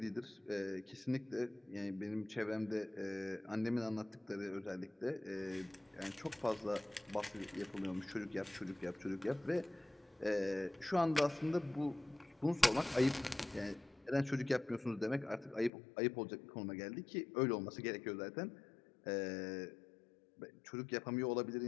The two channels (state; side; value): drops out; right; at 15.7 s